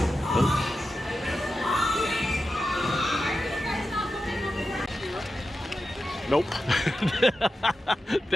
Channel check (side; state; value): both; normal; correlation 0.91